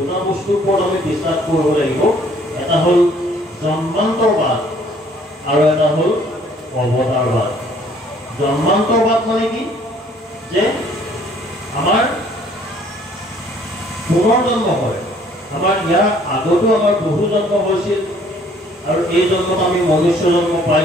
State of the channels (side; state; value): both; normal; correlation 0.59